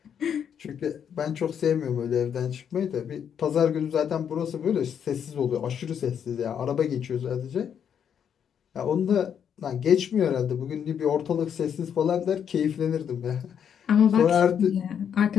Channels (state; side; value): quieter; right; 8.2 dB